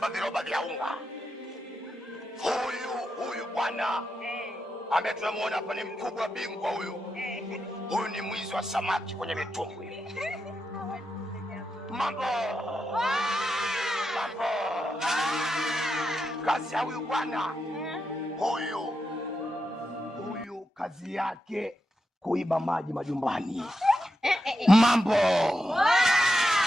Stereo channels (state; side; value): normal; both; correlation 0.87